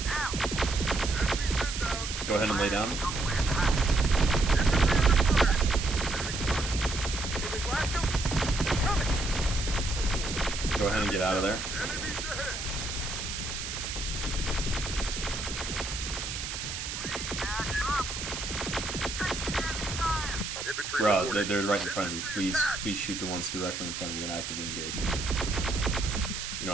Enemies inbound. Go ahead and lay down. Can we blast them? Coming. Go ahead and get out of there. Enemies ahead. Infantry Bro, reporting. they're right in front of you. Please shoot the ones directly in front of you and actively engage. You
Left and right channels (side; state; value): right; noise; hiss, 5 dB below the sound